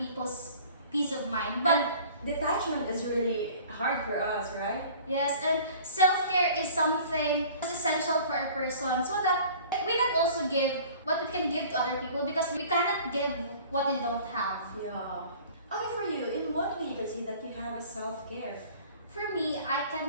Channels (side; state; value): both; inverted; correlation -0.47